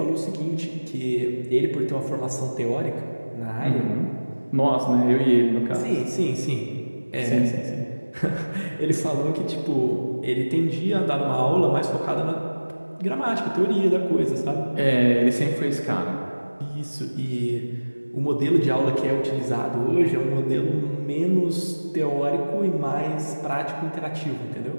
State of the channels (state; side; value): inverted; both; correlation -1.00